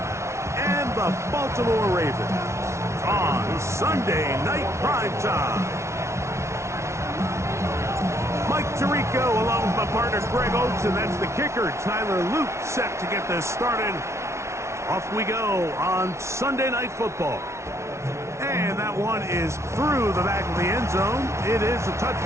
and the Baltimore Ravens on Sunday Night Primetime. Mike Tirico along with my partner Greg Oates, and that's the kicker, Tyler Luke, set to get this started. Off we go on Sunday Night Football. And that one is through the back of the end zone. It is a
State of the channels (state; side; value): late; left; 0.13 ms